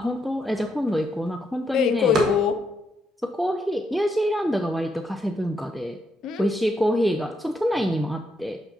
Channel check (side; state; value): both; normal; correlation 0.78